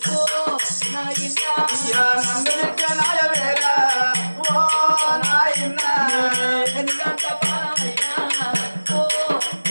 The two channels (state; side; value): inverted; both; correlation -1.00